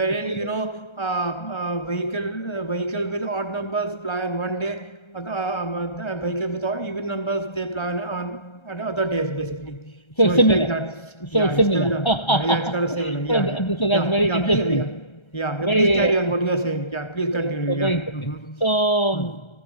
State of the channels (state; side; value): late; right; 1.3 ms